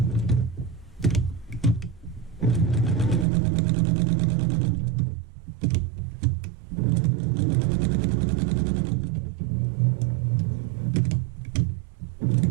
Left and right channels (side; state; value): left; drops out; at 3.2 s